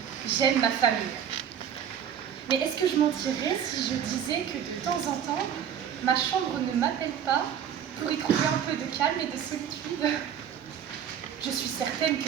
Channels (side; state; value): left; quieter; 8.8 dB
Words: j'aime ma famille. Mais est-ce que je mentirais si je disais que de temps en temps, ma chambre ne m'appelle pas pour y trouver un peu de calme et de solitude? Je suis certaine